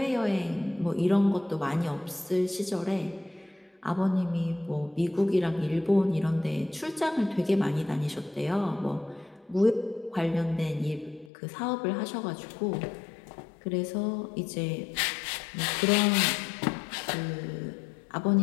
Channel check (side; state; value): right; drops out; at 11.3 s